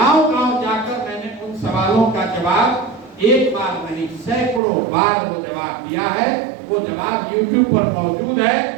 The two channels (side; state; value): left; drops out; at 4.6 s